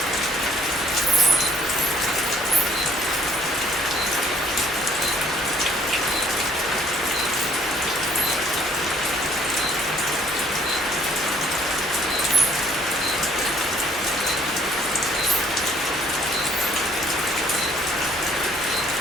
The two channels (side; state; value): both; normal; correlation 0.64